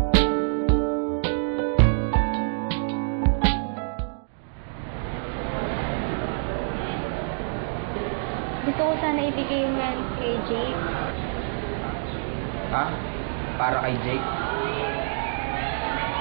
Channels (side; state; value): left; silent; digital silence